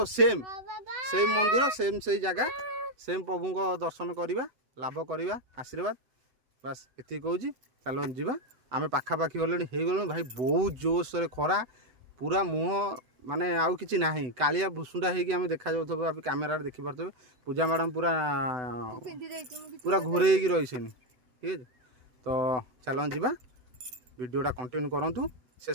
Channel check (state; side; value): late; left; 8.0 ms